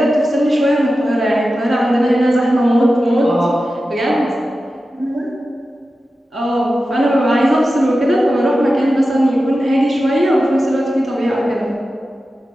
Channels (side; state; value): both; normal; correlation 0.93